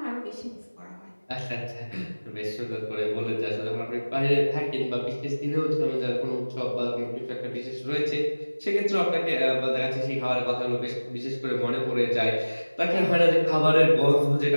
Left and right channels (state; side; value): inverted; both; correlation -1.00